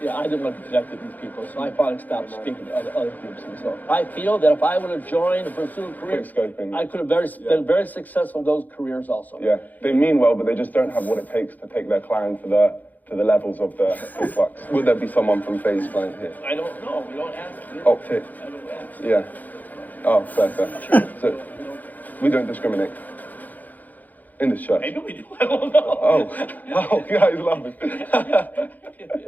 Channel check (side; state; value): right; late; 0.082 ms